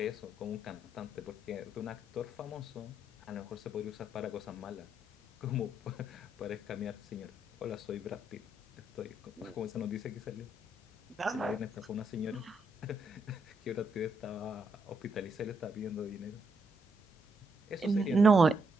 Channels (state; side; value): normal; both; correlation 0.77